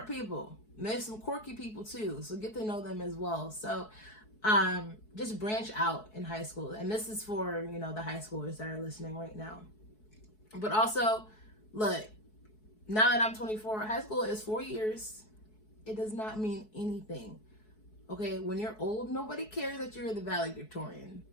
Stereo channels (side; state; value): right; late; 4.7 ms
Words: people. And there's some quirky people too. So get to know them as well. So just branch out in high school. And this is for, you know, the high schoolers that are listening right now. But also, look, now that I'm 24, high school is 4 years. It does not mean anything. Okay, when you're old, nobody cares that you're the valedictorian.